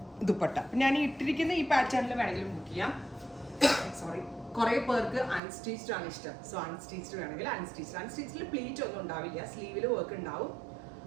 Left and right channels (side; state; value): left; drops out; at 5.4 s